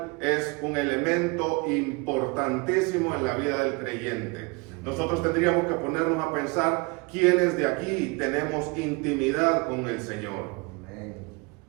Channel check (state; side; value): quieter; left; 28.7 dB